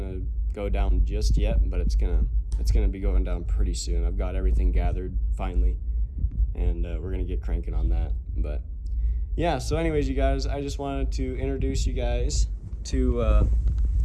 go down just yet, but it's gonna be going down pretty soon. I've got everything gathered finally, and we're gonna get cranking on that. But yeah, so anyways, you guys, I just wanted to introduce you guys to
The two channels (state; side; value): identical; both; correlation 1.00